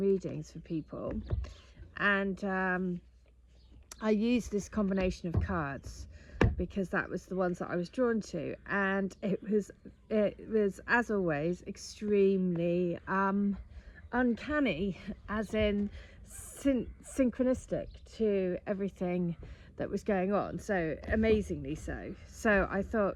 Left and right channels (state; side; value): identical; both; correlation 1.00